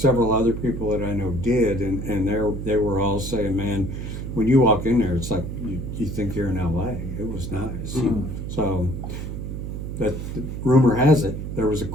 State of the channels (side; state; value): right; noise; hum, 6 dB below the sound